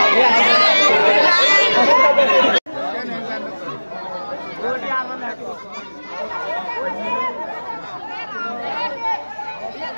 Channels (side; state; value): both; inverted; correlation -1.00